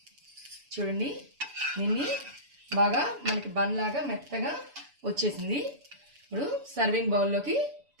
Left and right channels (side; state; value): left; late; 7.0 ms